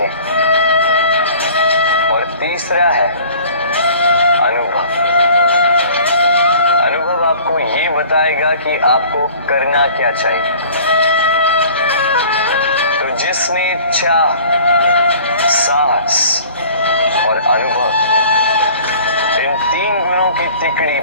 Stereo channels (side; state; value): both; inverted; correlation -0.48